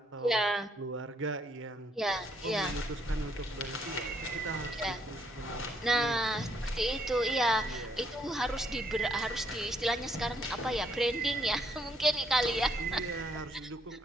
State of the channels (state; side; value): normal; both; correlation 0.71